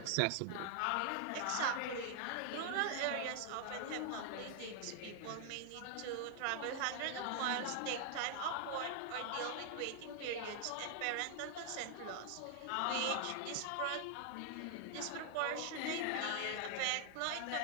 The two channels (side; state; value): both; different; correlation 0.00